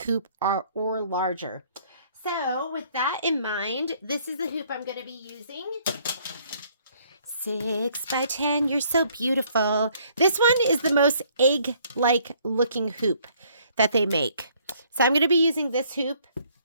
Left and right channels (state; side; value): inverted; both; correlation -0.63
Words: or larger. So with that in mind, this is the hoop I'm going to be using. 6x10, you're so beautiful. This one is the most egg-like looking hoop that they make. So I'm going to be using this hoop.